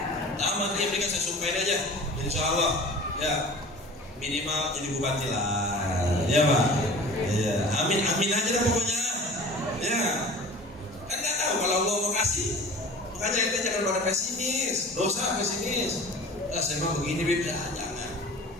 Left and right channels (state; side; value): normal; both; correlation 0.40